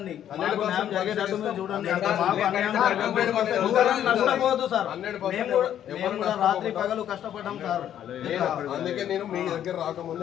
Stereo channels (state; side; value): quieter; right; 10.5 dB